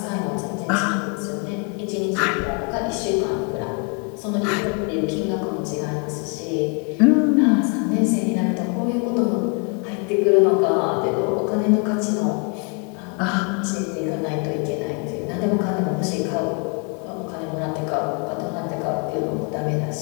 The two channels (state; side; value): quieter; right; 35.6 dB